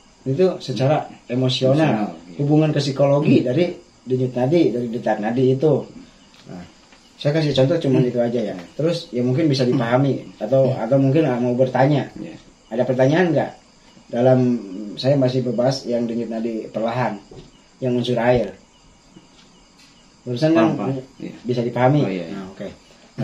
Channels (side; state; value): both; identical; correlation 1.00